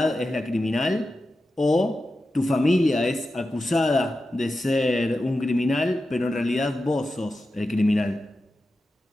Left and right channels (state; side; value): normal; both; correlation 0.92